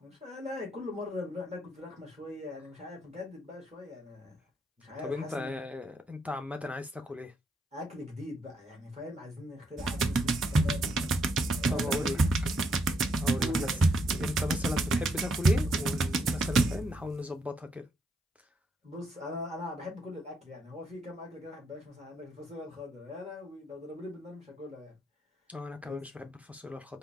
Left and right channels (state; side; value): normal; both; correlation 0.76